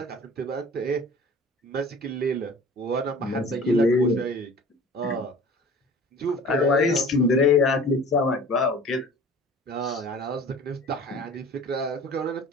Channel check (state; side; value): normal; both; correlation 0.43